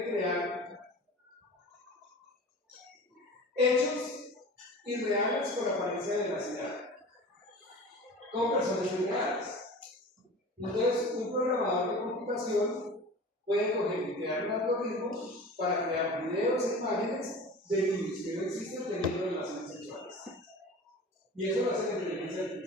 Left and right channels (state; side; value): normal; both; correlation 0.38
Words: crear hechos irreales con apariencia de veracidad, con personas irreales. Entonces, un programador de computación puede coger y crear un algoritmo para crear videos e imágenes de niños que no existen teniendo relaciones sexuales. Y eso lo hace la inteligencia